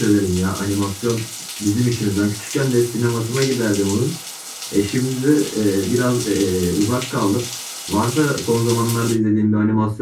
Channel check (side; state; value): both; identical; correlation 1.00